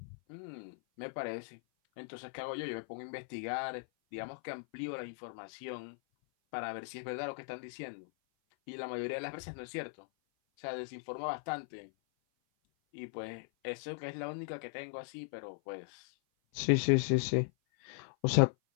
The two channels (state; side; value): silent; right; 52 dB below the other